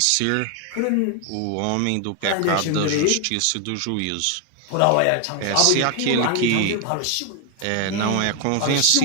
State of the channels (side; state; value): both; different; correlation 0.01